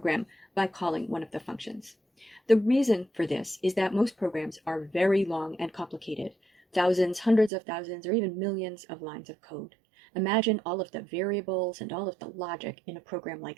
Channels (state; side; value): drops out; left; at 7.5 s